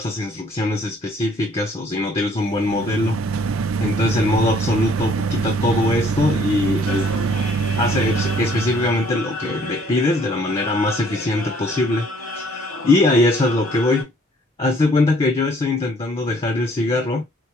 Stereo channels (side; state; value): both; normal; correlation 0.61